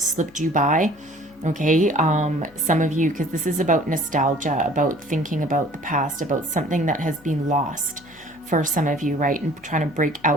you by. Okay, some of you, because this is about nostalgia, about thinking about the past, about something that has been lost. for some of you, right? And trying to break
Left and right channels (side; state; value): left; noise; hum, 27 dB below the sound